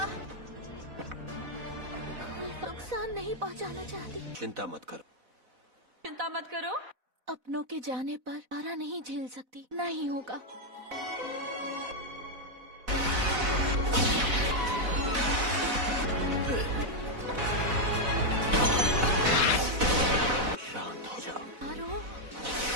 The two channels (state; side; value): late; left; 4.0 ms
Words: कोई नुकसान नहीं पहुंचाना चाहती। चिंता मत करो। चिंता मत करो। अपनों के जाने पर सारा नहीं झेल सकती। नहीं होगा। शांत हो जाओ। तारो